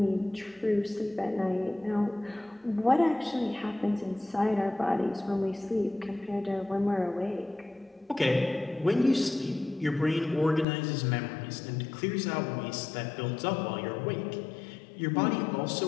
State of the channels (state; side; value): drops out; right; at 10.7 s